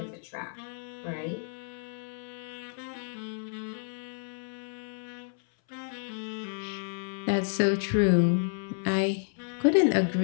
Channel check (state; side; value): silent; right; 57 dB below the other